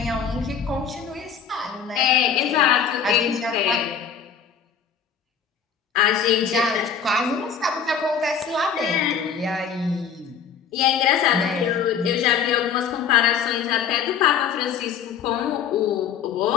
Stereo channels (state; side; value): quieter; right; 7.2 dB